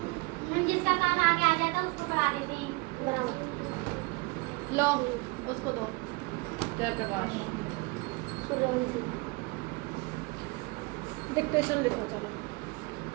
जिसका काम आगे आ जाता उसको पढ़ा देती बराबर। लो उसको दो जयप्रकाश। डिक्टेशन लिखो चलो।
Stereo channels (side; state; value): left; quieter; 26.6 dB